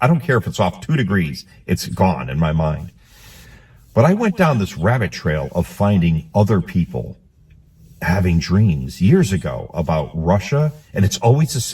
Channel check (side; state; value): both; identical; correlation 1.00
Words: I don't care if it's off 2 degrees. It's gone in my mind. But I went down this rabbit trail of finding other people having dreams years ago about Russia, and it's always the